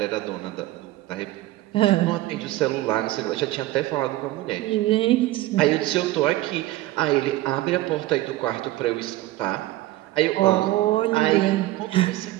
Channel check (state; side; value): quieter; left; 16.5 dB